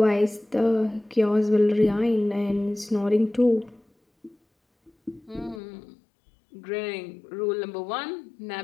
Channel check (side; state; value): right; drops out; at 5.6 s